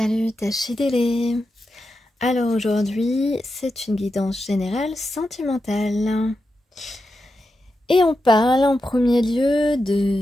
Tachidélé. Alors aujourd'hui, c'est une guidance générale sentimentale. Et on parle en premier lieu de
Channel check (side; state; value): both; normal; correlation 0.89